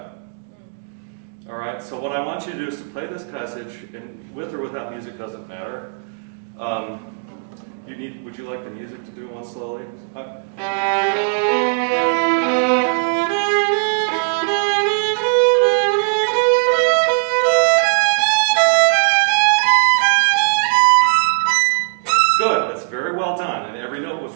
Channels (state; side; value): silent; left; 67 dB below the other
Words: All right, so what I want you to do is to play this passage, and with or without music doesn't matter. Would you like the music to do one slowly? Good, that's very well done, and every note was